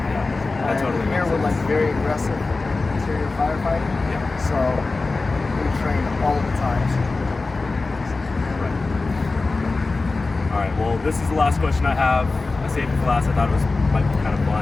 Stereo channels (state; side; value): quieter; right; 3.6 dB